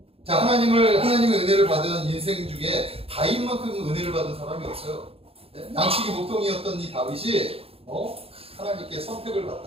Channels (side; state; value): left; late; 0.28 ms